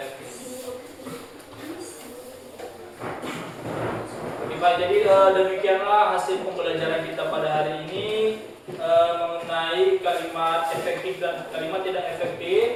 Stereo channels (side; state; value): both; identical; correlation 1.00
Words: Baik, jadi demikianlah hasil pembelajaran kita pada hari ini mengenai kalimat efektif dan kalimat tidak